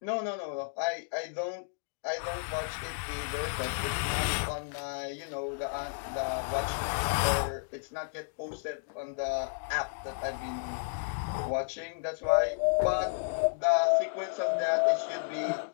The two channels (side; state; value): right; silent; digital silence